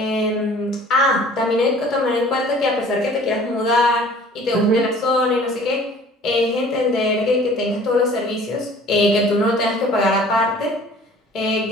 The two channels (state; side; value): normal; both; correlation 0.50